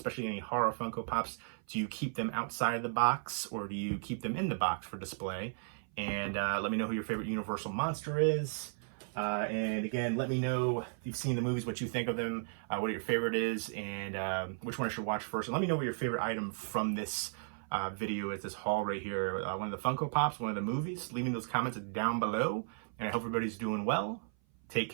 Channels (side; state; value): left; silent; 54 dB below the other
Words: any horror Funko Pops. Do you keep them outside of the box, or do you keep them in the box for display? And let me know who your favorite Universal monster is. And again, let me know if you've seen the movies, what you think of them, what your favorite is, and which one I should watch first. And let me know what your favorite item from this video is, this haul right here. One of the Funko Pops, one of the movies. Leave me those comments down below. And I hope everybody's doing well. Take